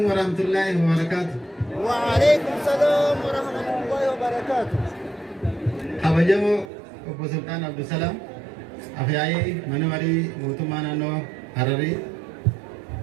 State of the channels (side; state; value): left; drops out; at 6.7 s